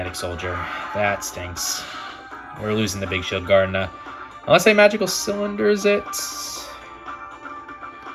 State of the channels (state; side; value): identical; both; correlation 1.00